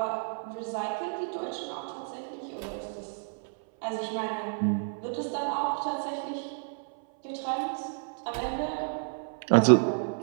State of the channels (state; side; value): silent; left; 57 dB below the other